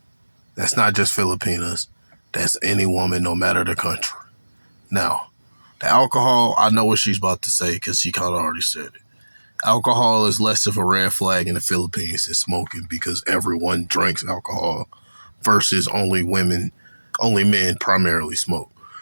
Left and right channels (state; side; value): inverted; both; correlation -1.00